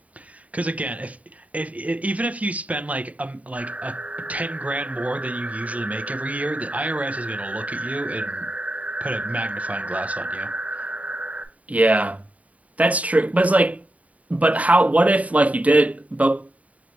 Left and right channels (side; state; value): left; late; 0.069 ms